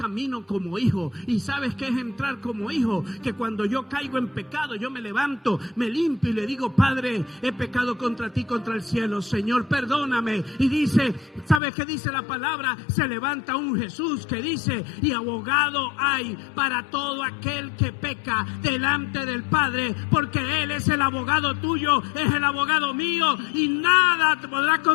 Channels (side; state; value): right; drops out; at 11.6 s